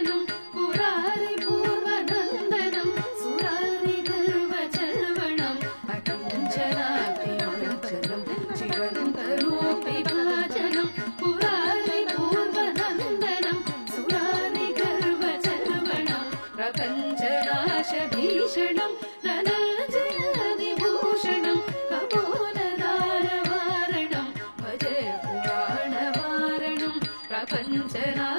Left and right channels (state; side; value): inverted; both; correlation -1.00